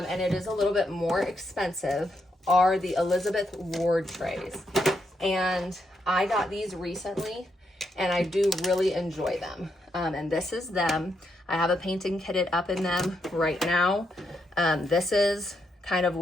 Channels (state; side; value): normal; both; correlation 0.80